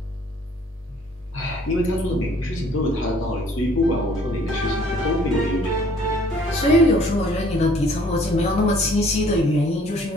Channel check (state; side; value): normal; both; correlation 0.58